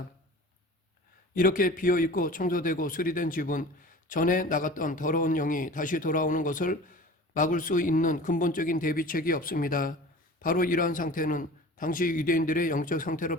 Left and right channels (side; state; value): both; normal; correlation 0.39